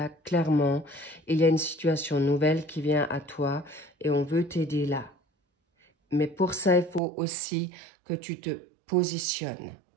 clairement, il y a une situation nouvelle qui vient à toi et on veut t'aider là. Mais pour ça, il faut aussi que tu te positionnes,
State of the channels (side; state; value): left; drops out; at 7.0 s